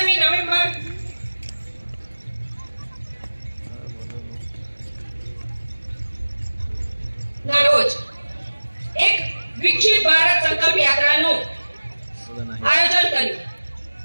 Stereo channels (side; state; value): both; inverted; correlation -1.00